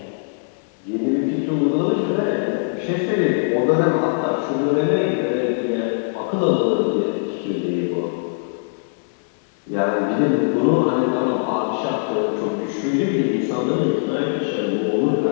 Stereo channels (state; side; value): silent; right; digital silence